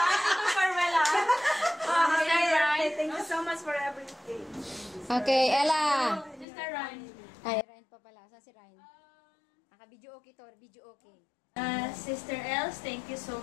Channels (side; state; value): right; drops out; at 6.5 s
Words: Farewell ha. Thank you so much for everything. Okay, Ella. Sister Ryan. Ay, Ryan pa pala. Saan si Ryan? Naka-video okay to. Video okay. Sister Els, thank you so